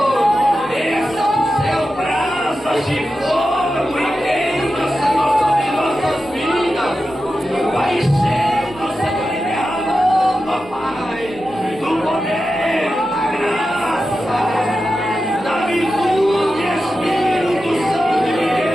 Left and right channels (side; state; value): both; normal; correlation 0.91